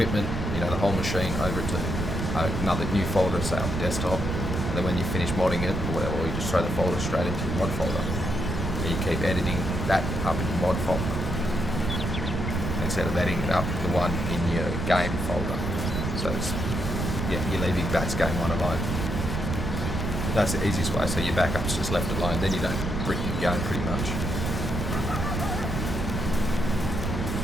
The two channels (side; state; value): right; noise; rumble, 2 dB below the sound